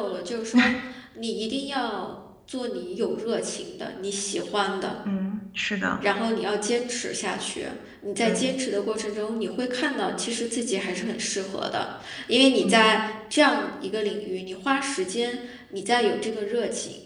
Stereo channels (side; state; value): both; identical; correlation 1.00